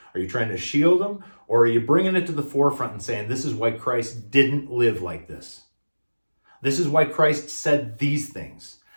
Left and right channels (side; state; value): both; inverted; correlation -1.00